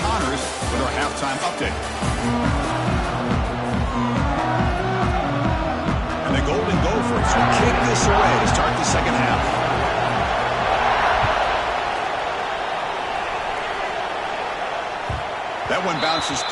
with our halftime update. And the Golden Gophers will kick this away to start the second half. That one bounces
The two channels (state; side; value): identical; both; correlation 1.00